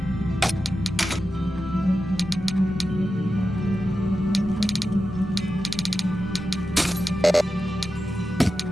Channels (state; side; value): normal; both; correlation 0.91